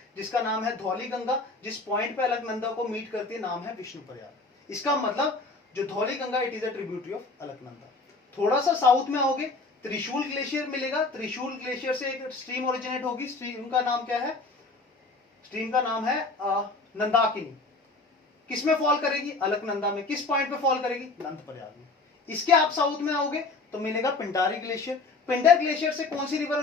जिसका नाम है धौली गंगा, जिस पॉइंट पे अलकनंदा को मीट करती है, नाम है विष्णु प्रयाग। इसका मतलब जो Dhauli Ganga, it is a tributary of Alaknanda. थोड़ा सा साउथ में आओगे, त्रिशूल ग्लेशियर मिलेगा, त्रिशूल ग्लेशियर से एक स्ट्रीम ओरिजिनेट होगी, स्ट्रीम का नाम क्या है, स्ट्रीम का नाम है नंदाकिनी। किसमें फॉल करेगी, अलकनंदा में। किस पॉइंट पे फॉल करेगी, नंद प्रयाग में। इसके आप साउथ में आओगे तो मिलेगा पिंडारी ग्लेशियर। पिंडर ग्लेशियर से कौन सी रिवर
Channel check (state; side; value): quieter; right; 3.7 dB